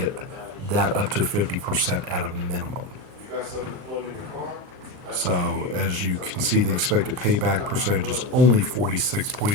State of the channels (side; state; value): left; late; 38 ms